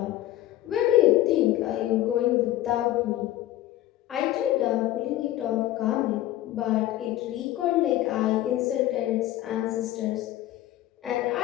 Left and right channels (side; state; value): right; quieter; 14.4 dB